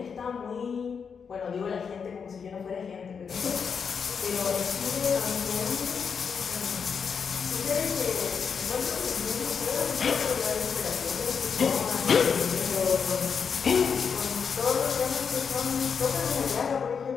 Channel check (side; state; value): right; quieter; 6.3 dB